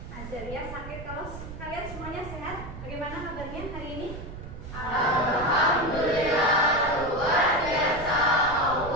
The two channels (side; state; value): right; noise; rumble, 11 dB below the sound